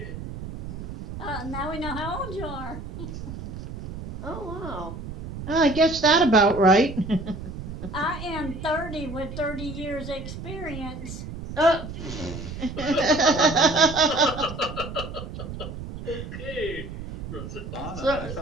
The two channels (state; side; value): noise; right; rumble, 9 dB below the sound